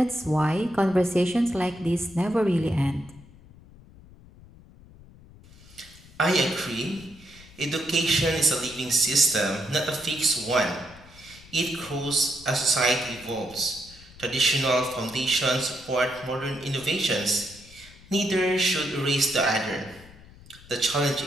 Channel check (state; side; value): noise; left; rumble, 22 dB below the sound